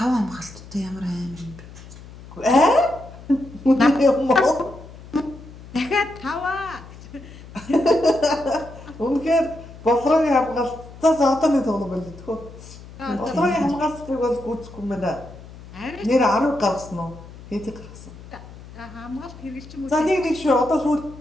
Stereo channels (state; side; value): noise; left; hum, 17 dB below the sound